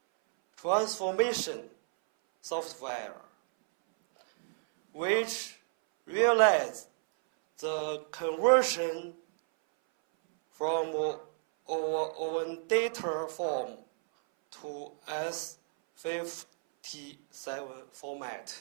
transformation software, which realized the conversion from our own data form to S57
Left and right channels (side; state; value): left; silent; 57 dB below the other